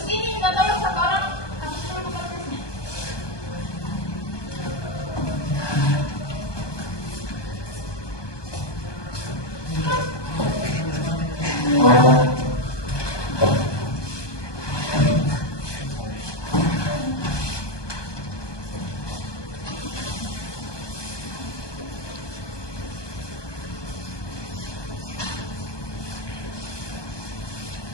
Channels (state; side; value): late; right; 1.2 ms